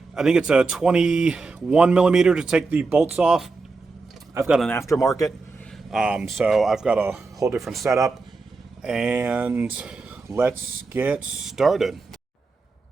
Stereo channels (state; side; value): quieter; left; 3.9 dB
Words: think it's a 21 millimeter to take the bolts off. I've got an aftermarket, so I've got a whole different setup, and let's get started.